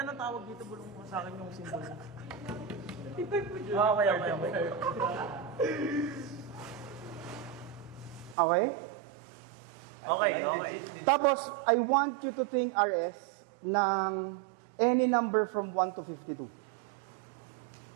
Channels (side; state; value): left; drops out; at 8.3 s